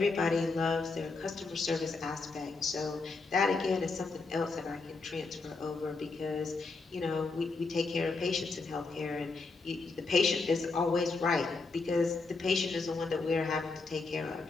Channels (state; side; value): quieter; right; 3.9 dB